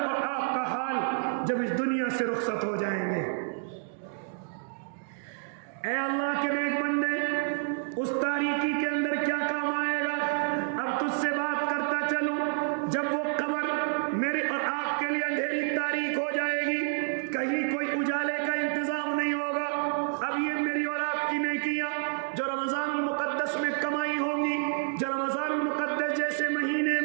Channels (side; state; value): left; silent; 59 dB below the other